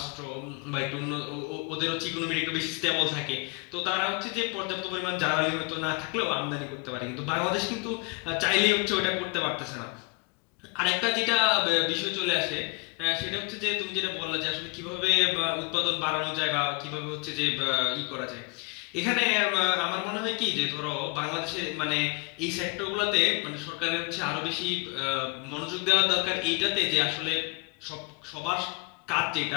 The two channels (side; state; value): right; quieter; 29.5 dB